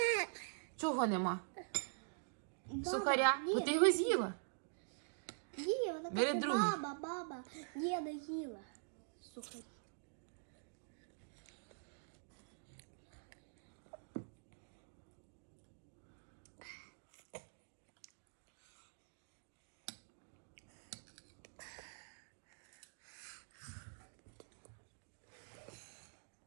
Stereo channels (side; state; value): left; silent; digital silence